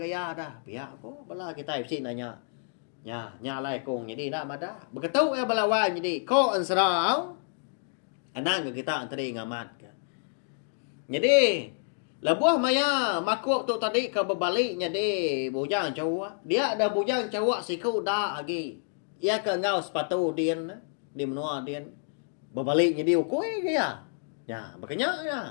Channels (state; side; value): silent; right; digital silence